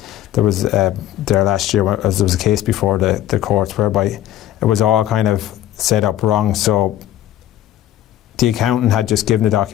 there was there last year, as there was a case before the courts whereby it was all kind of set up wrong. So the accountant had just given the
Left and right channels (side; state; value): right; quieter; 12.9 dB